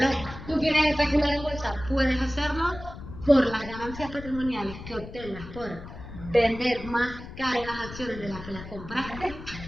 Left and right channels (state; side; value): noise; left; rumble, 13 dB below the sound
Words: ¿Tú quieres especular en bolsa? Puedes hacerlo por las ganancias patrimoniales que obtengas por vender más caras las acciones de las que las compraste,